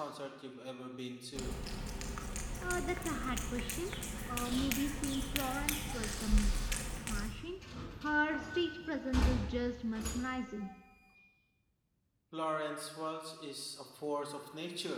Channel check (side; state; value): both; identical; correlation 1.00